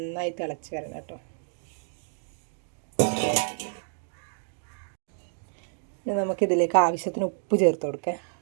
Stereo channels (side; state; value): left; silent; digital silence